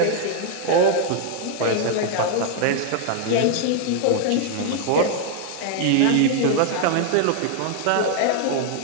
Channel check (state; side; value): different; both; correlation 0.00